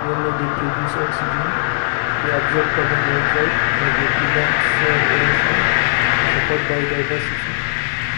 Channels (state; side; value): silent; right; 67 dB below the other